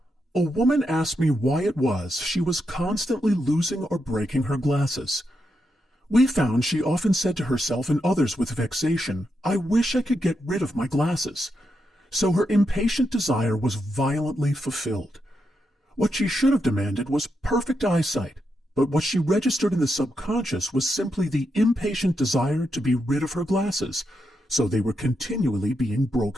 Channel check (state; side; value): normal; both; correlation 0.84